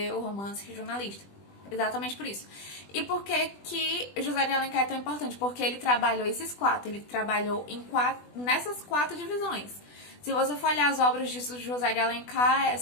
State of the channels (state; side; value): late; right; 20 ms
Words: o romance regionalista. Exatamente por isso. E por que José de Alencar é tão importante? Porque ele trabalhou esses 4. Ele trabalhou nessas 4 divisões. Se você for olhar as obras de José de Alencar,